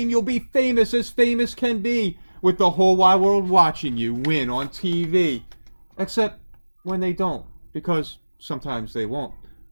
you'll be famous as famous can be, with the whole wide world watching you win on TV. Except when they don't, because sometimes they won't.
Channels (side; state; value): both; inverted; correlation -1.00